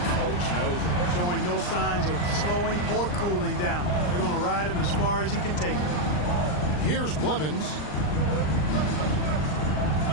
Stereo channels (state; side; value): late; right; 39 ms